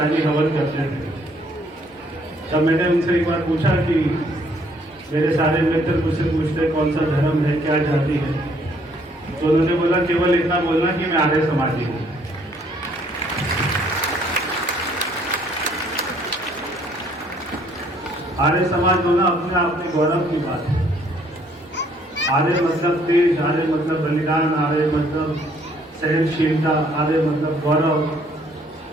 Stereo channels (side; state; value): both; normal; correlation 0.64